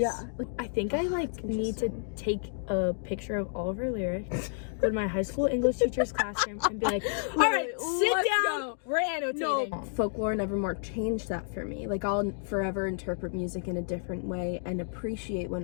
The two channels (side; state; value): right; silent; digital silence